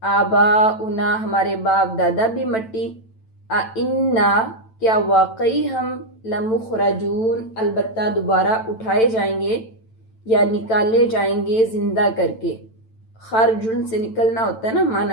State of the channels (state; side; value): late; right; 9.0 ms